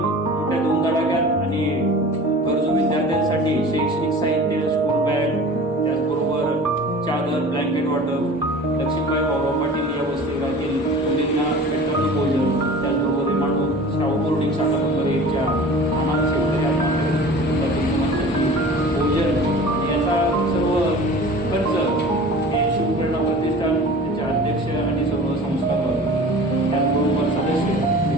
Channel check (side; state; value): both; normal; correlation 0.40